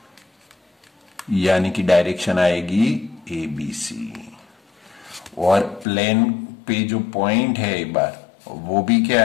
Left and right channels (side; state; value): right; drops out; at 5.9 s